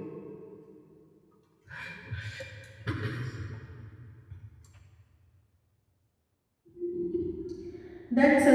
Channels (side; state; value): both; identical; correlation 1.00